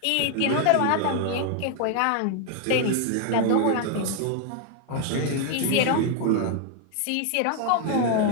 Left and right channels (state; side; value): different; both; correlation 0.00